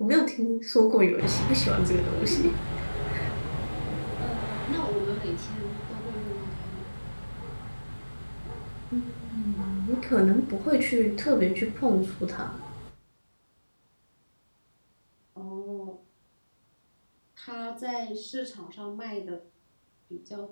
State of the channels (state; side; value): inverted; both; correlation -1.00